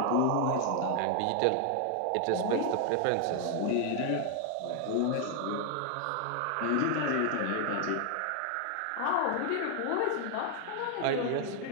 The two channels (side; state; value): both; different; correlation 0.00